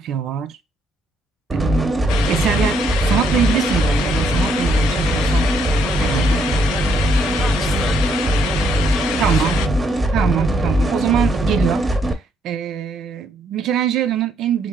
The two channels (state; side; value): normal; both; correlation 0.72